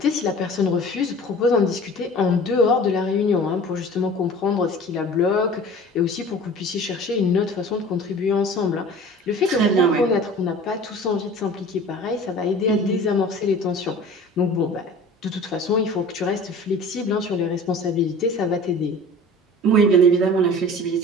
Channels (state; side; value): normal; both; correlation 0.42